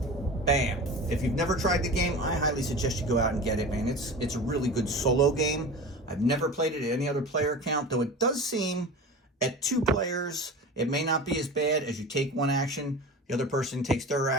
Bam. If you've never tried the game, I highly suggest you go out and get it, man. It's a really good solo game. I've never played it at any other player count, though it does seem at 2 players, it may not be as bad as you take 1 action. The other person takes their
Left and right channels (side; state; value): both; normal; correlation 0.33